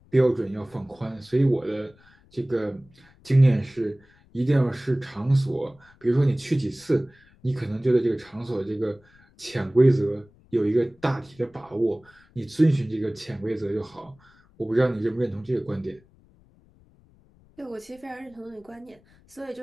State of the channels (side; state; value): left; noise; rumble, 29 dB below the sound